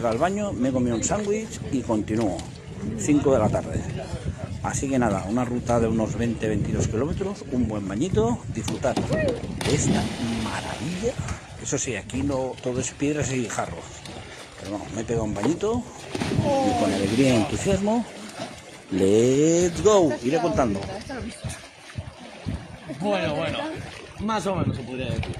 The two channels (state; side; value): identical; both; correlation 1.00